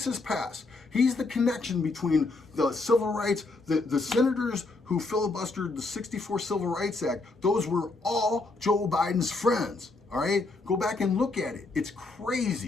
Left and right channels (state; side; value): quieter; right; 3.4 dB